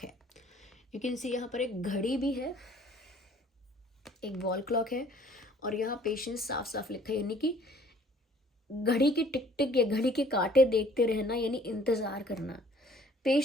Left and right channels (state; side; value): normal; both; correlation 0.56